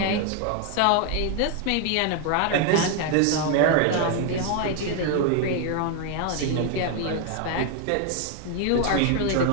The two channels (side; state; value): both; different; correlation 0.01